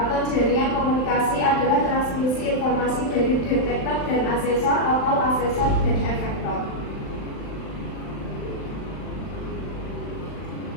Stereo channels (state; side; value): late; right; 39 ms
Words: jaringan komunikasi adalah transmisi informasi dari detektor dan asesor atau asesor dan efektor.